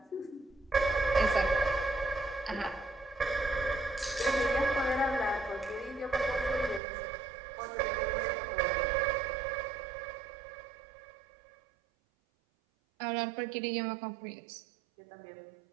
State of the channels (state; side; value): drops out; left; at 6.8 s